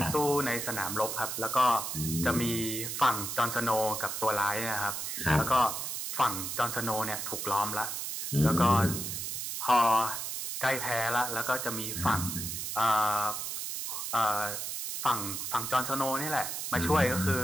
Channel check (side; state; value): right; noise; hiss, 4 dB below the sound